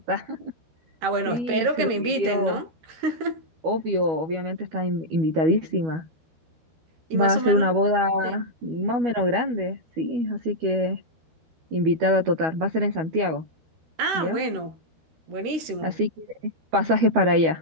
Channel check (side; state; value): left; late; 13 ms